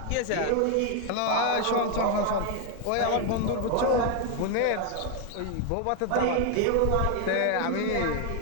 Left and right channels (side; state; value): both; different; correlation 0.01